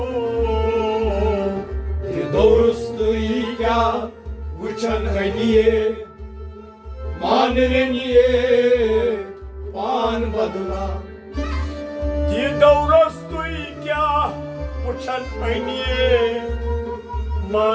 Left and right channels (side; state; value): both; identical; correlation 1.00